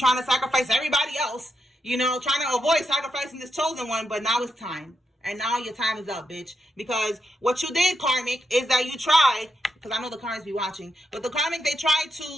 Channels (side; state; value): both; normal; correlation 0.83